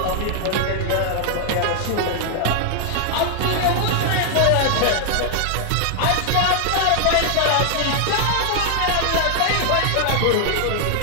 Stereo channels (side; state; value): both; different; correlation 0.00